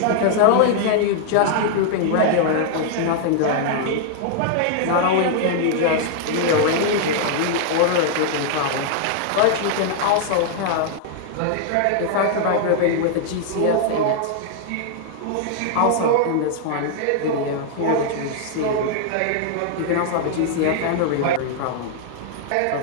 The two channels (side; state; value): both; different; correlation -0.01